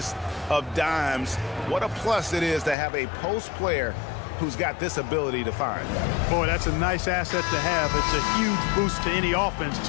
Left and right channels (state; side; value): drops out; right; at 2.8 s